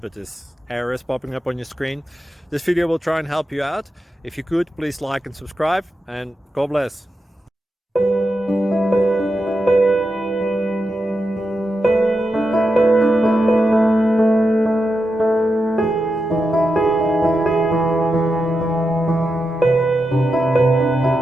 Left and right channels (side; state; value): both; normal; correlation 0.88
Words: but this error is popping up on your screen. This video will try and help you out. If you could, please like and subscribe, and God bless.